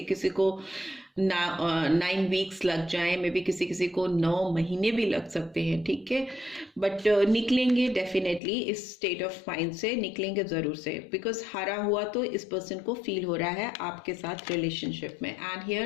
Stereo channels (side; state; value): right; drops out; at 8.4 s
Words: को 9 वीक्स लग जाए, मे भी किसी को 9 महीने भी लग सकते हैं, ठीक है। बट निकलेंगे डेफिनेटली, इस स्टेट ऑफ माइंड से निकलेंगे ज़रूर से, बिकॉज हारा हुआ तो इस पर्सन को फील हो रहा है आपके साथ रिलेशनशिप में। And